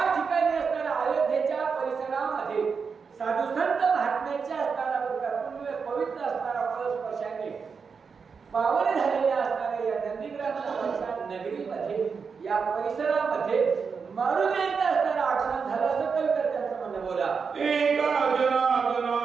ठिकाणी असणाऱ्या अयोध्येच्या परिसरामध्ये साधू संत महात्म्याच्या असणारा पवित्र असणारा फळस्पर्शाने पावन झालेल्या असणाऱ्या या नंदीग्रामच्या नगरीमध्ये या परिसरामध्ये मारुतीचं असणारं आगमन झालं असं कविकर्त्यांचं म्हणणं. बोला एका जनार्दना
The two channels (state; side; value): quieter; left; 5.6 dB